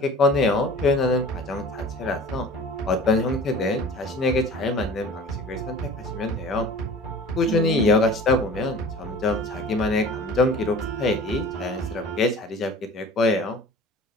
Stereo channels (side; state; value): both; normal; correlation 0.42